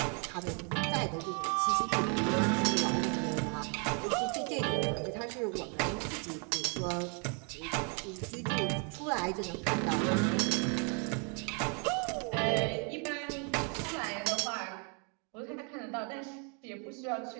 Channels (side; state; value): left; quieter; 36.8 dB